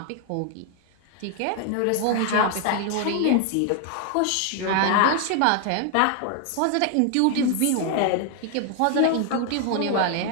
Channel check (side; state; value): both; different; correlation 0.00